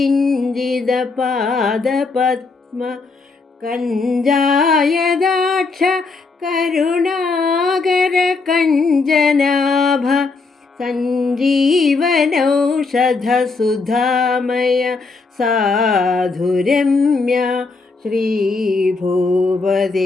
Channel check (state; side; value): quieter; right; 4.1 dB